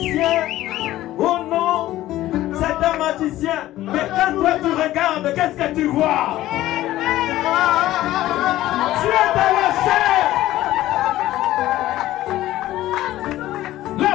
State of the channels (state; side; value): quieter; right; 15.0 dB